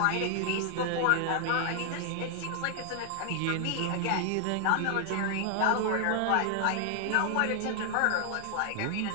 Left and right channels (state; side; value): different; both; correlation 0.00